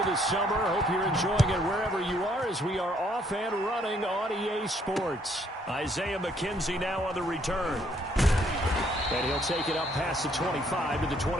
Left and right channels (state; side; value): normal; both; correlation 0.67